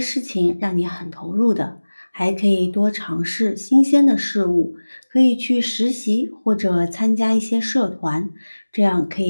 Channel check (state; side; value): inverted; both; correlation -1.00